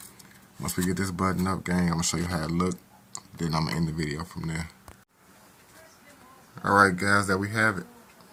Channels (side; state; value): both; identical; correlation 1.00